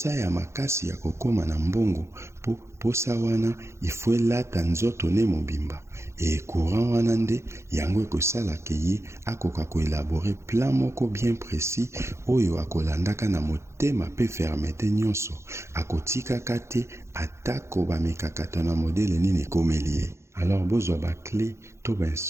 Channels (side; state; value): left; late; 0.13 ms